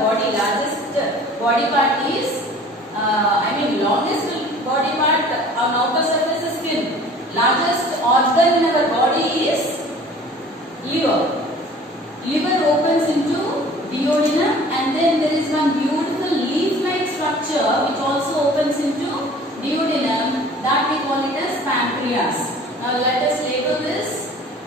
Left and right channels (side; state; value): both; normal; correlation 0.47